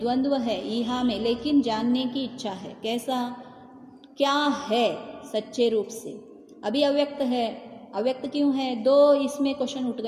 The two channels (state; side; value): identical; both; correlation 1.00